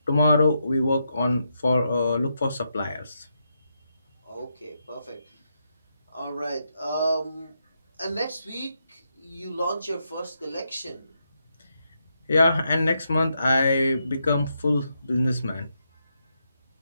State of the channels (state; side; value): inverted; both; correlation -0.82